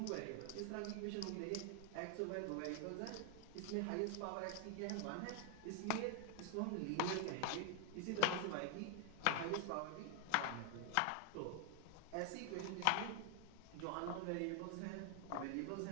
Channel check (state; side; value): different; both; correlation 0.00